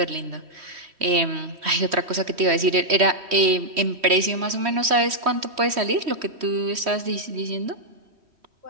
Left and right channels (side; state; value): left; late; 3.1 ms